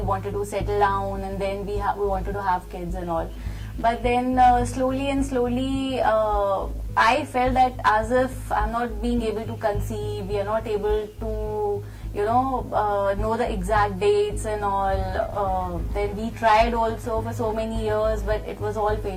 to settle down and then we wanted to have kids and all. But then slowly, I felt that as if I'm not being able to conceive, we are not able to know the exact dates and all. Then we tried also for so many years, but it was all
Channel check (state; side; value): identical; both; correlation 1.00